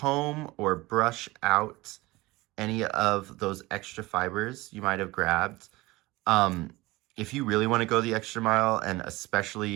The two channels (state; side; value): quieter; left; 20.8 dB